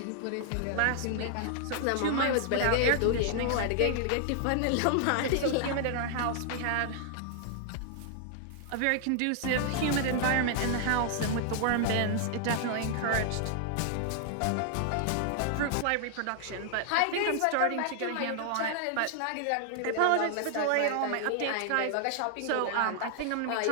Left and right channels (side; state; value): both; different; correlation -0.01